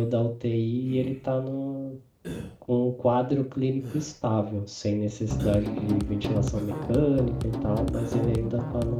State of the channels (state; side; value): identical; both; correlation 1.00